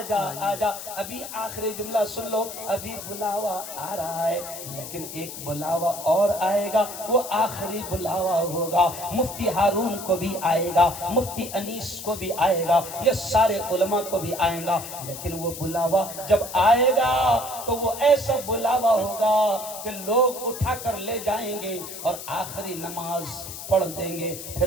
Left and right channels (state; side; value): noise; left; hiss, 10 dB below the sound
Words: آجا. ابھی آخری جملہ سن لو, ابھی بلاوا آ رہا ہے لیکن ایک بلاوا اور آئے گا, وہ آخری بلاوا ہوگا. مفتی ہارون کو بھی آئے گا, مفتی انیس کو بھی آئے گا, یہ سارے علماء کو بھی آئے گا, لیکن وہ بلاوا جب آئے گا تو وہ ایسا بلاوا ہوگا کہ لوگ اٹھا کر لے جائیں گے اور آخری نماز پڑھ دیں گے,